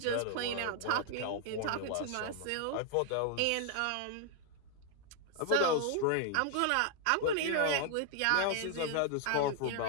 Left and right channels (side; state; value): both; different; correlation 0.00